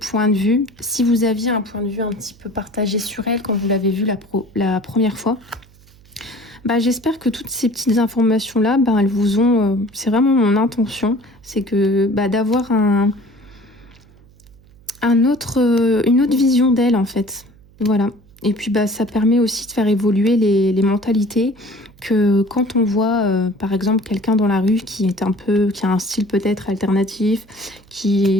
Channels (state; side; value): noise; right; hum, 27 dB below the sound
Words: de vue, si vous aviez un point de vue un petit peu partagé sur elle quand vous l'avez vue la première fois, bah, j'espère que toutes ces petites informations là, bah, elles vous ont, c'est vraiment mon intention, c'est que bah, d'avoir une autre vision d'elle en fait, voilà. Et puis bah ça permet aussi de faire évoluer les mentalités, que quand on voit par exemple quelqu'un dans la rue qui a un style peut-être alternatif,